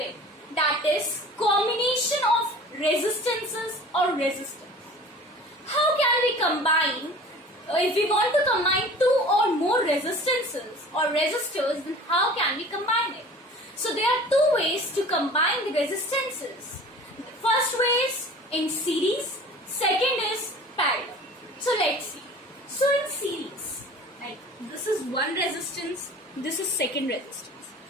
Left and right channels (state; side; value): normal; both; correlation 0.43